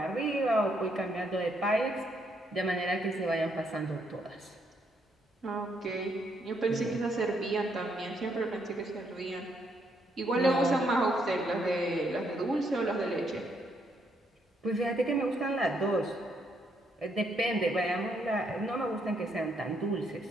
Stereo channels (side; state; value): both; normal; correlation 0.74